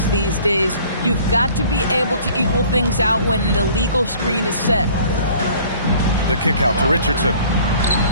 these days. You've got to be able to equal things out when an illegal screen is set. The kick out to Richardson.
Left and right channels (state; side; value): inverted; both; correlation -0.52